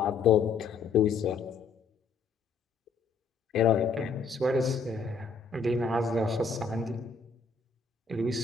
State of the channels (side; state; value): right; quieter; 4.9 dB